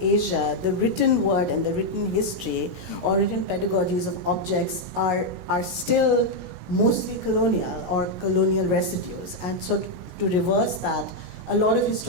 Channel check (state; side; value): late; left; 16 ms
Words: the written word and the written history or written pedagogies of objects are still mostly colonial or colonial residues. And so to reverse that, a lot of